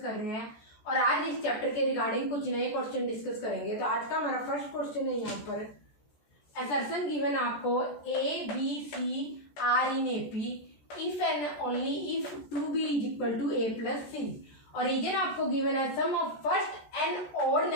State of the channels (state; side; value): late; right; 14 ms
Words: कर रहे हैं और आज इस चैप्टर के रिगार्डिंग कुछ नए क्वेश्चन डिस्कस करेंगे। तो आज का हमारा फर्स्ट क्वेश्चन है यहाँ पर असर्शन गिवन आपको A B C are in AP if and only if 2b is equal to a plus C और रीजन आपको गिवन है sum of first n odd